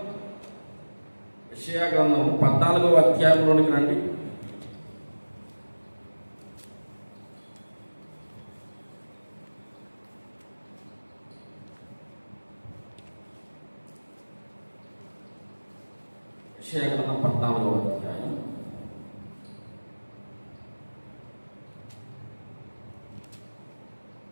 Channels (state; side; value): inverted; both; correlation -1.00